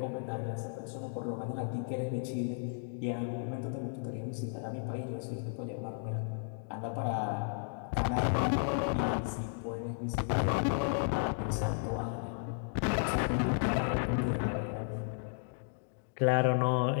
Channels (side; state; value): right; silent; digital silence